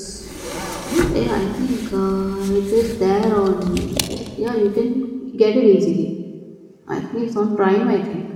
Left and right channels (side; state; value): both; identical; correlation 1.00